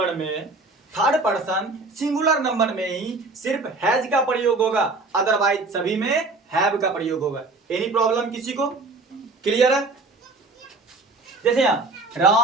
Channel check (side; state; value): left; quieter; 3.3 dB